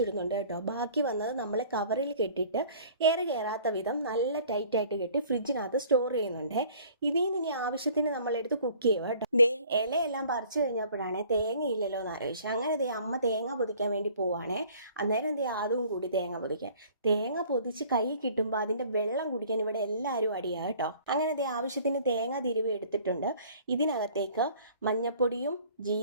കേട്ടോ. ബാക്കി വന്നത് നമ്മൾ കവറിൽ കെട്ടിയിട്ട് എയർ കയറാത്ത വിധം നല്ല ടൈറ്റായിട്ട് കെട്ടി ഫ്രിഡ്ജിനകത്ത് സ്റ്റോർ ചെയ്യുന്നുണ്ട്. ഇതിൽ നിന്ന് ഇനി ആവശ്യത്തിന് നമ്മളെടുത്ത് കുക്ക് ചെയ്യുക കേട്ടോ. ദേ ഇലയെല്ലാം പറിച്ചു കഴിഞ്ഞപ്പോഴാണേ തേങ്ങയില്ലല്ലോ എന്ന് ആലോചിച്ചു. അങ്ങനെ ദേ അമ്മ തേങ്ങ പൊതിക്കാൻ വേണ്ടി പോവാണേ. അന്നേരം ദേ ആദുവും കൂടി തേങ്ങ പൊതിക്കാൻ. തേങ്ങ പൊതിച്ച് കൈ കിട്ടുമ്പോൾ അതിൻ്റെ വെള്ളം കുടിക്കാൻ ഇവിടെ എല്ലാവരും അടിയാ കേട്ടോ. അങ്ങനെ ദേ ആവശ്യത്തിന് തേങ്ങ തിരുവി എടുത്തിട്ടുണ്ട്. ഇതിനകത്തേക്ക് മഞ്ഞപ്പൊടിയും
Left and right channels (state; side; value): inverted; both; correlation -0.52